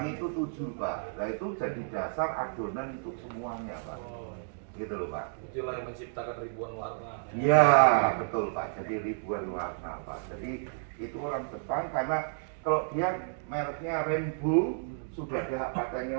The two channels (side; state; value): left; silent; digital silence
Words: itu tujuh Pak. Nah itu jadi dasar adonan untuk semuanya Pak. Oh, Gitu loh Pak. itulah yang menciptakan ribuan warna. Iya betul Pak. Jadi ribuan warna Pak. Jadi itu orang Jepang karena kalau dia mereknya Rainbow sudah ada hak patennya